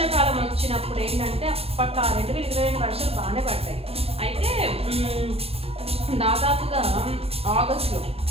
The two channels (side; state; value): left; late; 0.29 ms